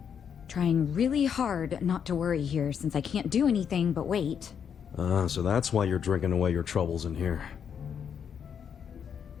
Trying really hard not to worry here since I can't do anything but wait. So that's why you're drinking away your troubles in here.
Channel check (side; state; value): right; quieter; 7.6 dB